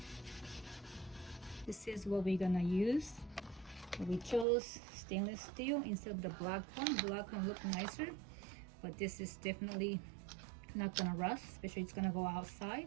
This is what we're gonna use. We chose stainless steel instead of the black one. Black one looked nicer, but this is definitely not gonna rust, especially it's gonna go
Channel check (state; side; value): drops out; left; at 4.5 s